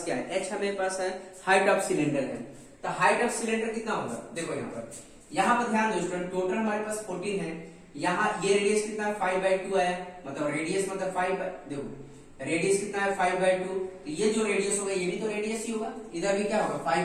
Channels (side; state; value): both; identical; correlation 1.00